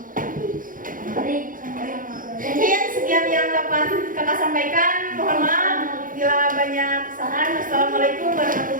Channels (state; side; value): late; left; 0.40 ms